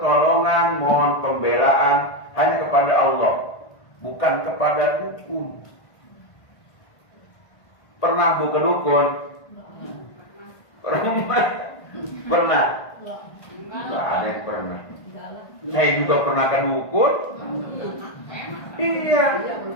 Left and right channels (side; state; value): right; late; 1.5 ms